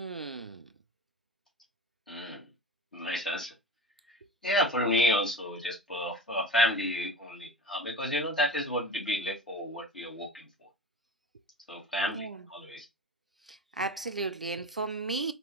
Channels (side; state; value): both; normal; correlation 0.31